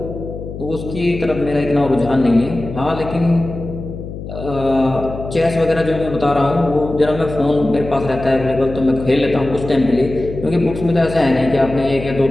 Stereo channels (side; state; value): left; noise; hum, 10 dB below the sound